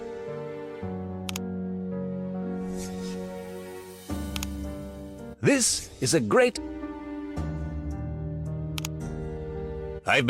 This is a great... I've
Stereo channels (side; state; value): both; identical; correlation 1.00